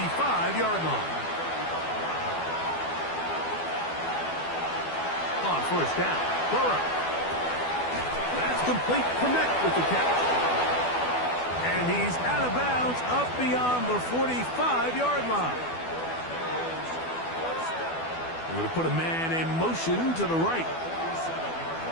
line. On first down, Burrow. That's complete. Connect with the catch. And he's out of bounds up beyond the 45-yard line. We're going to put a man in motion to the right.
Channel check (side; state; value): right; late; 12 ms